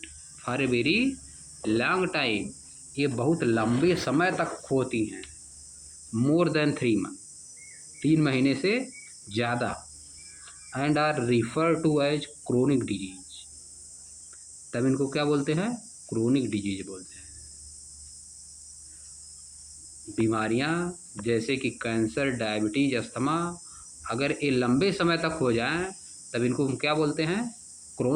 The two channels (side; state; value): both; identical; correlation 1.00